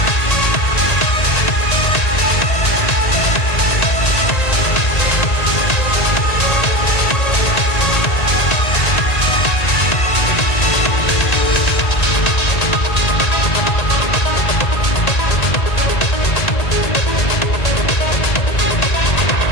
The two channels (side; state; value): right; late; 1.9 ms